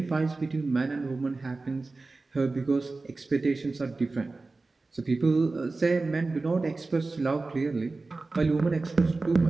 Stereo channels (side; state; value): left; quieter; 3.5 dB